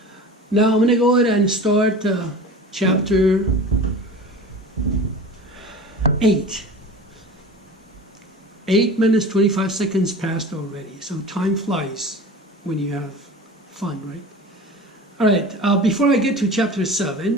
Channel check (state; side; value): normal; both; correlation 0.36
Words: Now I'm going to go ahead and start chapter 8. 8 minutes, 25 seconds passed already. So time flies when you have fun, right? All right, before I get to chapter